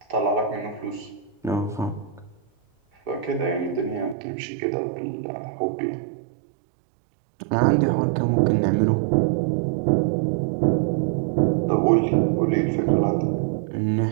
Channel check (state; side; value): drops out; left; at 4.2 s